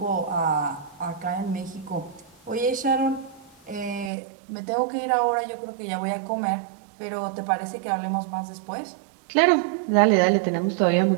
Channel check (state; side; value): drops out; left; at 4.1 s